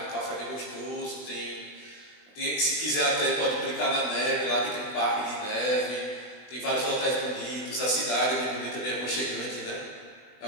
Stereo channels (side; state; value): right; late; 20 ms